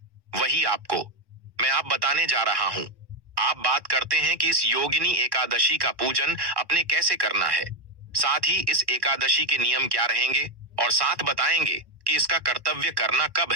वही आपको मैं आप बताने जा रहा हूं। आप बात करते हैं कि इस योगिनी एकादशी का पूजन अपने कैसे करना है, साथ ही इस एकादशी के नियम क्या रहेंगे, और साथ बताएंगे कि इसका कर्तव्य करना कब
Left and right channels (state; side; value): late; left; 1.1 ms